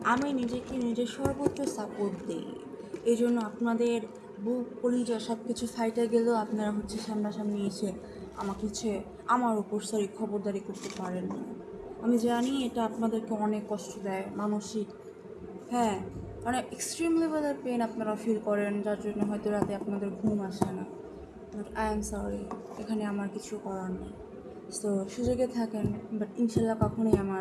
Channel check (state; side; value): identical; both; correlation 1.00